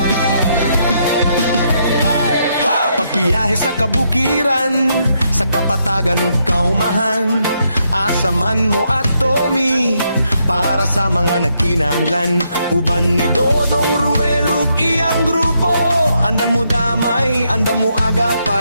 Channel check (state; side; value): inverted; both; correlation -0.77